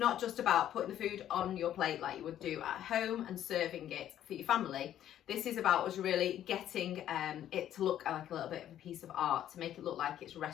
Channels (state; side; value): quieter; right; 11.3 dB